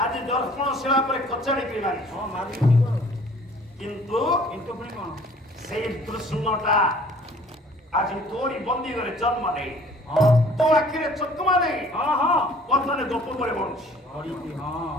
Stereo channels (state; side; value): normal; both; correlation 0.53